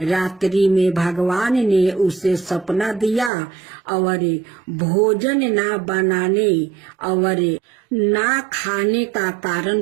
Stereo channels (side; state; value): left; drops out; at 3.3 s